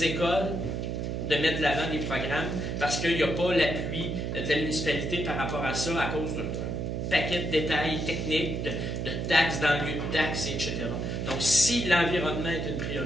écoles de mettre de l'avant des programmes parce qu'il n'y a pas l'appui de la municipalité par rapport à ça à cause d'un paquet de détails techniques, de taxes dans le lieu de taxes, etc. Donc, si l'environnement est une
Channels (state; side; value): noise; right; hum, 2 dB below the sound